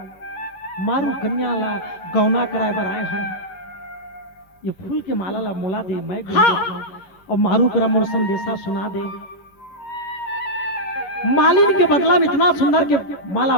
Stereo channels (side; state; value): right; late; 11 ms